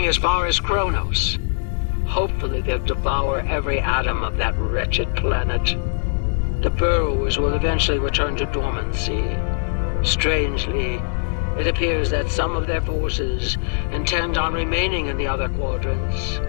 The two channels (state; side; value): silent; right; digital silence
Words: as far as Kronos. Hopefully they'll devour every atom of that wretched planet. The Burrowers will eventually return to dormancy. Strangely, it appears that some of their forces intend on remaining in the other quadrants.